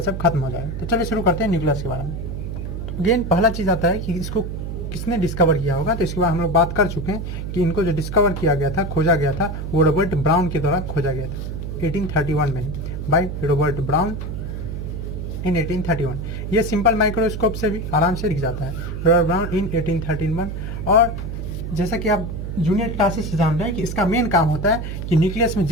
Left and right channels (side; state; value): right; noise; hum, 5 dB below the sound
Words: सब खत्म हो जाएगा। तो चलिए शुरू करते हैं न्यूक्लियस के बारे में। तो अगेन पहला चीज़ आता है कि इसको किसने डिस्कवर किया होगा। तो इसके बाद हम लोग बात कर चुके हैं कि इनको जो डिस्कवर किया गया था, खोजा गया था, वो रॉबर्ट ब्राउन के द्वारा खोजा गया था 1831 में, बाय रॉबर्ट ब्राउन इन 1831। ये सिंपल माइक्रोस्कोप से भी आराम से दिख जाता है, रॉबर्ट ब्राउन इन 1831। और जैसा कि आप जूनियर क्लासेस से जान रहे हैं कि इसका मेन काम होता है कि न्यूक्लियस में